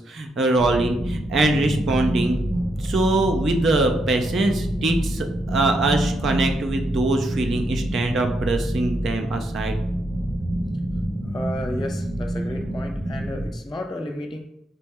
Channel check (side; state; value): both; normal; correlation 0.80